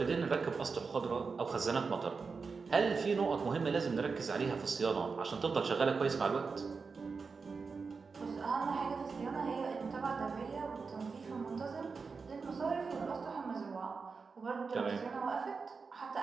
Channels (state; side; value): quieter; left; 4.9 dB